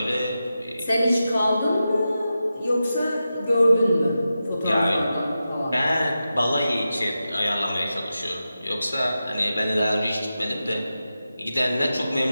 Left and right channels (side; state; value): both; inverted; correlation -0.91